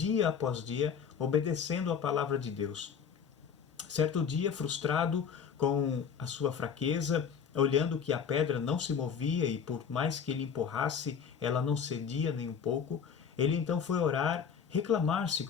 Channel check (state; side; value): quieter; right; 7.0 dB